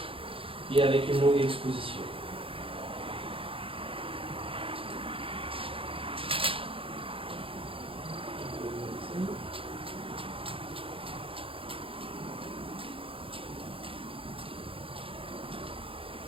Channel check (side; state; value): left; late; 0.26 ms